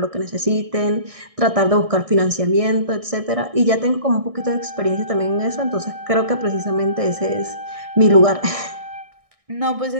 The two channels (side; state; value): left; late; 1.6 ms